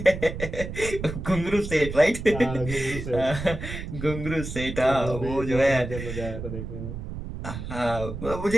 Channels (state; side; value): noise; right; rumble, 7 dB below the sound